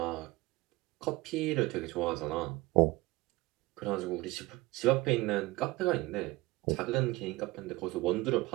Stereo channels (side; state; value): left; quieter; 20.7 dB